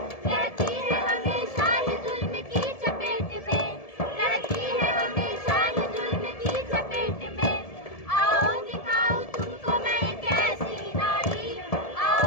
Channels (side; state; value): right; late; 1.7 ms